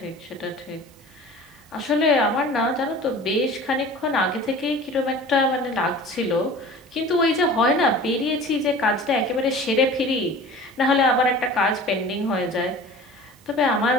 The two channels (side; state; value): both; normal; correlation 0.41